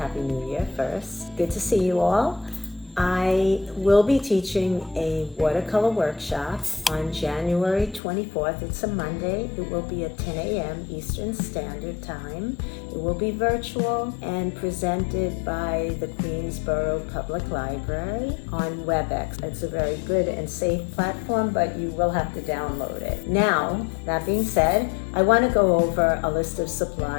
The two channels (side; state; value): right; drops out; at 8.0 s